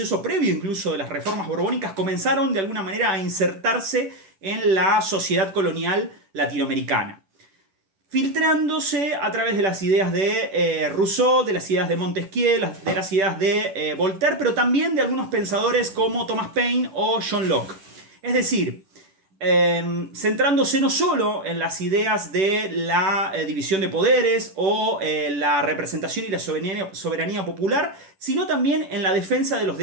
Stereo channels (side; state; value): left; late; 10 ms